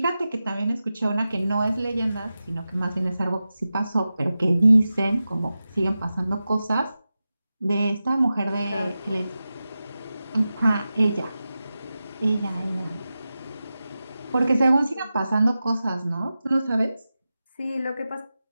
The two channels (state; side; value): inverted; both; correlation -0.93